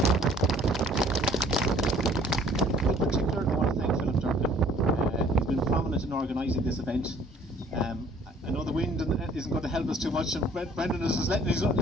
In particular, I want to thank Philip Durkin. He's been prominent in organising this event. I know the wind isn't going to help us too much, and Brendan is just letting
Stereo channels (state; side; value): normal; both; correlation 0.56